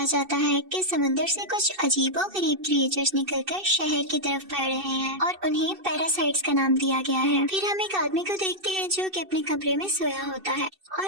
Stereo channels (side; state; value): left; late; 2.6 ms